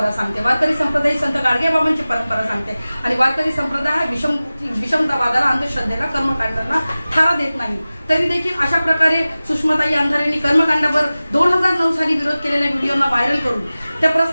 सांगते, वारकरी संप्रदाय संत गाडगेबाबांची परंपरा सांगते आणि वारकरी संप्रदाय हा विषमतावादाला, अंधश्रद्धेला, कर्मकांडांना थारा देत नाही। तरी देखील अशा प्रकारे सुषमाताई अंधारेंनी कर्मकांडावर 2009 साली विरोध केलेल्या व्हिडिओना व्हायरल करून त्या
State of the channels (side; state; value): both; inverted; correlation -0.97